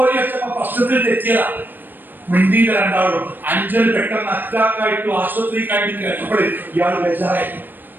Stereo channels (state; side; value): late; left; 0.092 ms